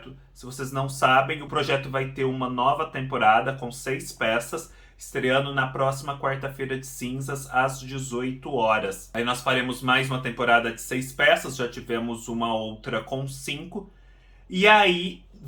Se vocês não sabem, o projeto vai ter uma nova temporada com 6 peças, estreando na próxima quarta-feira de cinzas, às 18 horas. Aí nós faremos mais uma temporada de 6 peças, já tivemos uma outra com 5. E aí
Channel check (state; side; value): identical; both; correlation 1.00